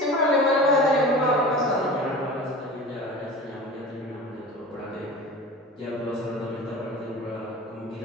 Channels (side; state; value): both; normal; correlation 0.36